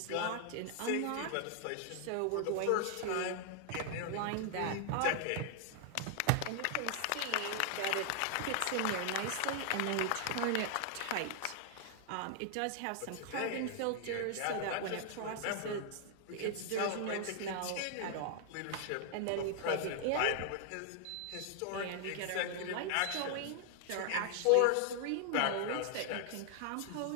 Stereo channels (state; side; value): different; both; correlation 0.00